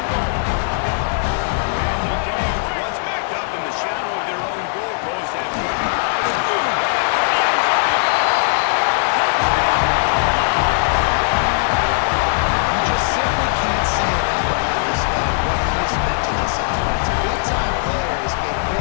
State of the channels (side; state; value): right; silent; digital silence